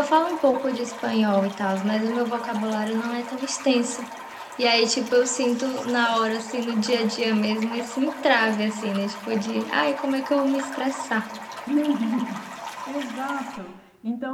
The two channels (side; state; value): both; identical; correlation 1.00